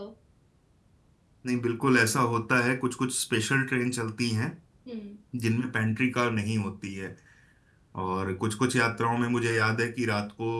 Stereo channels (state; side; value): identical; both; correlation 1.00